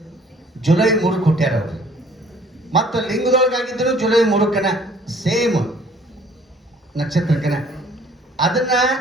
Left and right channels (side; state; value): both; normal; correlation 0.56